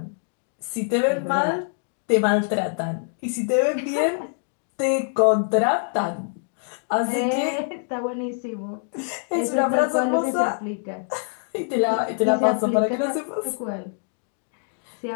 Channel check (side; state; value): right; silent; digital silence